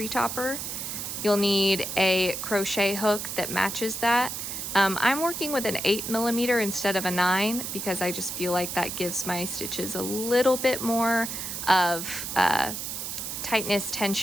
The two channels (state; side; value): noise; right; hiss, 5 dB below the sound